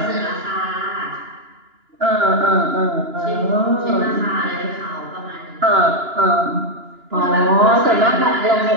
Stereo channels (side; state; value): left; late; 2.9 ms